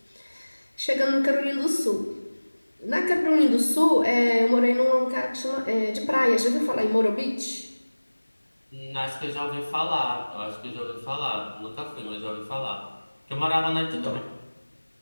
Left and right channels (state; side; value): inverted; both; correlation -1.00